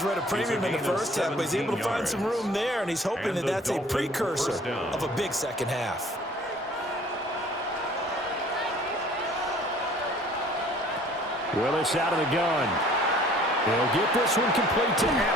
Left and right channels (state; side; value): normal; both; correlation 0.53